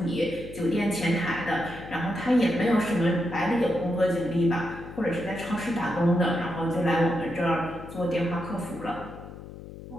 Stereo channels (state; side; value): noise; left; hum, 14 dB below the sound